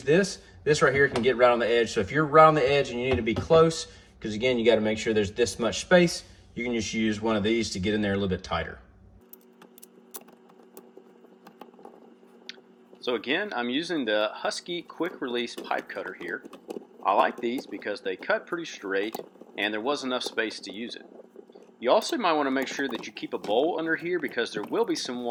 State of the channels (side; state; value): both; identical; correlation 1.00